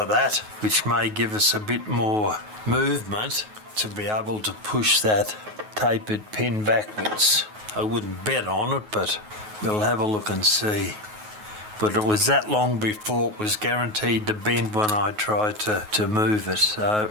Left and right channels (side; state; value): left; late; 9.4 ms